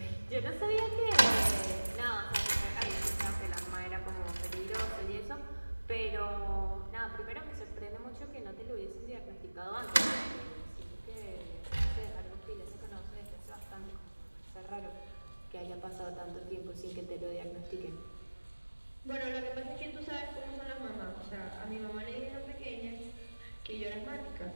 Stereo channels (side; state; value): both; inverted; correlation -1.00